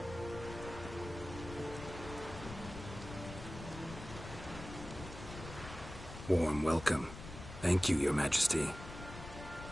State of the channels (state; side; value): noise; left; rumble, 11 dB below the sound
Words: Warm welcome. Thank you, Your Majesty.